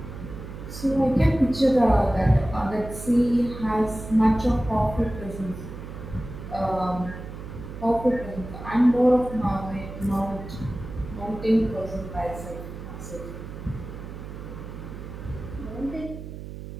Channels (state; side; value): noise; right; hum, 11 dB below the sound